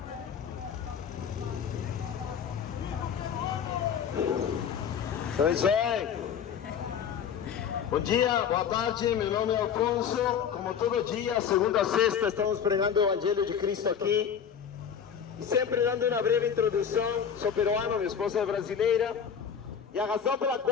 Deus abençoe. Bom dia, boa tarde. Meu nome é Alfonso. Como todo dia, segunda a sexta, estamos pregando o Evangelho de Cristo aqui. E sempre dando uma breve introdução. Sou peruano, minha esposa é brasileira. E a razão pela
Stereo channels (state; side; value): quieter; right; 7.7 dB